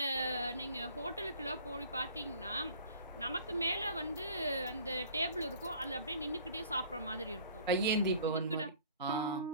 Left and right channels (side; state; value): both; inverted; correlation -0.51